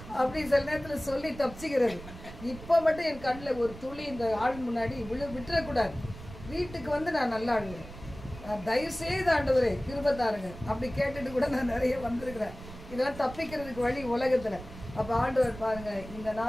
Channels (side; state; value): right; noise; rumble, 14 dB below the sound